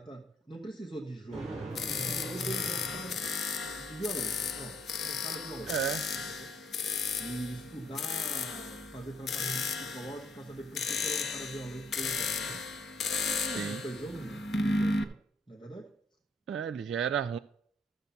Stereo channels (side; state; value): both; normal; correlation 0.66